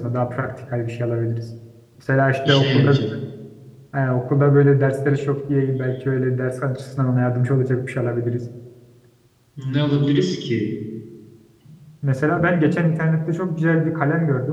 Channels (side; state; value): both; identical; correlation 1.00